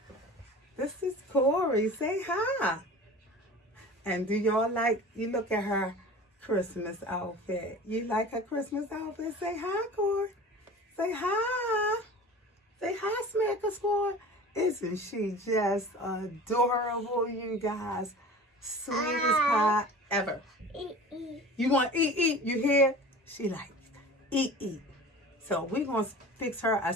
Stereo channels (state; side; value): normal; both; correlation 0.39